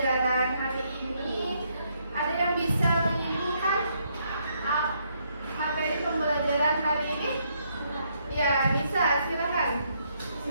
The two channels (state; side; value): inverted; both; correlation -0.73